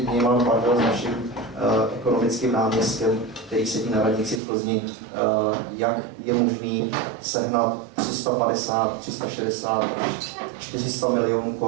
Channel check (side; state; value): left; drops out; at 4.4 s